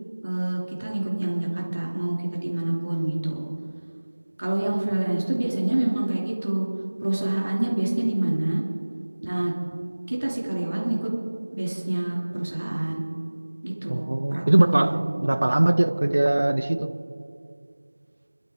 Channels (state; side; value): inverted; both; correlation -1.00